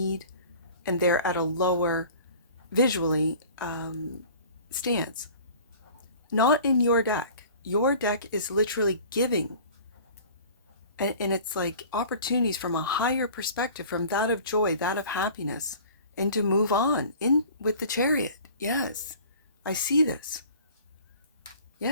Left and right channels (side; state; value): both; inverted; correlation -0.45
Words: and they're at a lower visually stance. Not in your deck. Your deck is literally giving, and it's like opportunities from a higher perspective, from that of joy, that of happiness, and to move on in with the Chariot. Yes, I see this.